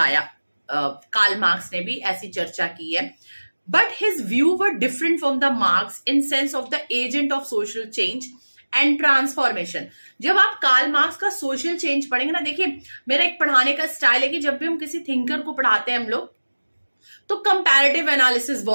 कार्ल मार्क्स ने भी ऐसी चर्चा की है। But his view were different from the Marx in sense of the agent of social change and transformation. जब आप कार्ल मार्क्स का सोशल चेंज पढ़ेंगे ना, देखिए मेरा एक पढ़ाने का स्टाइल है कि जब भी हम किसी थिंकर को पढ़ाते हैं हम लोग, तो कंपैरेटिव एनालिसिस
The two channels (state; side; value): inverted; both; correlation -1.00